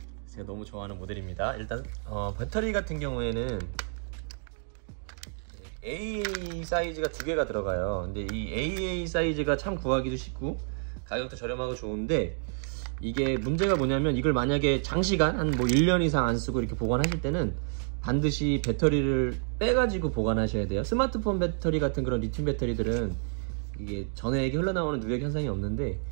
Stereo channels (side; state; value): left; silent; 56 dB below the other